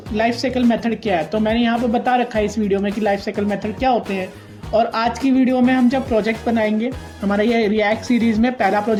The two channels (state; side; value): identical; both; correlation 1.00